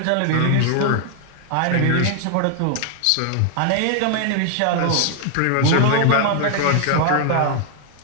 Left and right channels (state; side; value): different; both; correlation 0.00